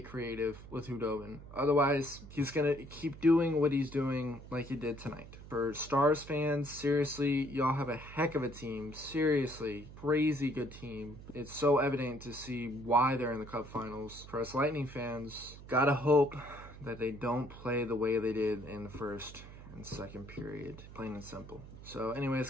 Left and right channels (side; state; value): right; noise; hum, 15 dB below the sound